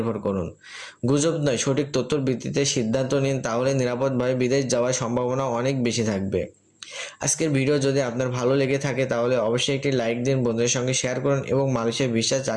করুন। গুজব নয়, সঠিক তথ্যের ভিত্তিতে সিদ্ধান্ত নিন, তাহলে নিরাপদভাবে বিদেশ যাওয়ার সম্ভাবনা অনেক বেশি থাকবে। আজকের ভিডিও যদি আপনার ভালো লেগে থাকে তাহলে অবশ্যই একটি লাইক দিন, বন্ধুদের সঙ্গে শেয়ার করুন এবং মালয়েশিয়া ভিসা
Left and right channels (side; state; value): both; identical; correlation 1.00